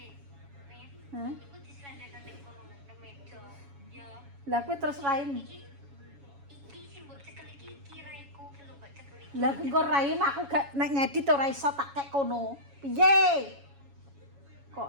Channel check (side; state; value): left; late; 7.2 ms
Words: Hah? Iku diselendeno ning kono nang meja. Ya. Lah kowe terus raim. Iki sing mbok cekel iki kiraiku ki lho mbok cekel iki. Lah engko raim aku gak nek ngedit ora iso tak kek kono. Piye?